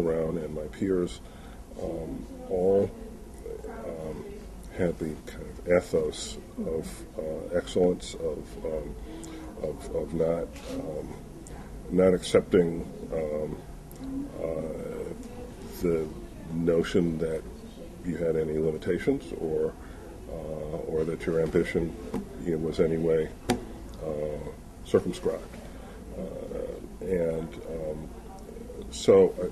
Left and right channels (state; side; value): identical; both; correlation 1.00